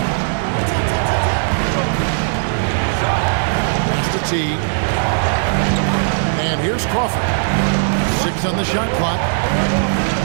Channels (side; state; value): left; silent; digital silence